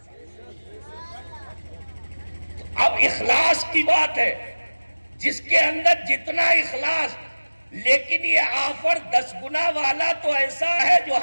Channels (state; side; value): inverted; both; correlation -1.00